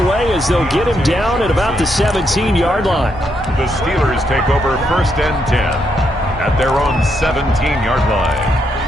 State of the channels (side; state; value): both; normal; correlation 0.78